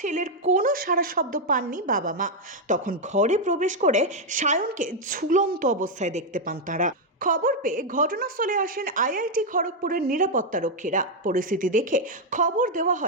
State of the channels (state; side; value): normal; both; correlation 0.01